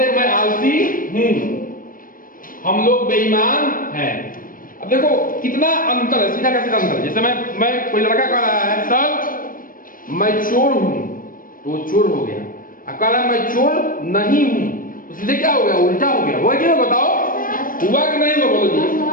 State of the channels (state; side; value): late; right; 0.40 ms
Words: हैं? मैं आलसी हूं, हम लोग बेईमान हैं। अब देखो कितना अंतर है, सीधा का सीधा अंतर। जैसे मैं कोई लड़का कह रहा है सर मैं चोर हूं, तो वो चोर हो गया। अब कह रहा है मैं चोर नहीं हूं, तो सीधे क्या हो गया? उल्टा हो गया। हुआ क्यों? बताओ, हुआ कि नहीं हुआ? बोलो जी।